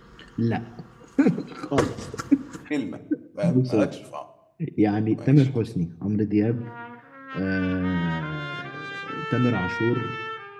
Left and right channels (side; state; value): both; identical; correlation 1.00